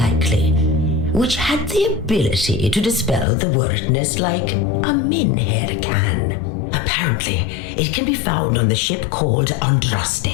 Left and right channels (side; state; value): right; drops out; at 3.2 s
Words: which had the ability to dispel the wordness like a minhair can. Apparently, it can be found on the ship called Andraste,